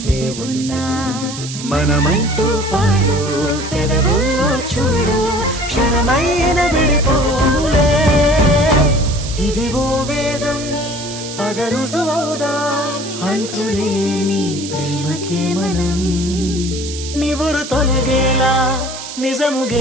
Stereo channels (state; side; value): noise; right; hiss, 10 dB below the sound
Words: ఉన్నా మనమంటూ పాడు పెదవుల్లో చూడు క్షణమైన విడిపోలే ఇదిగో వేదం పద రుజువవుదా అంతులేని ప్రేమకే మనం నివురు తొలగేలా నిజము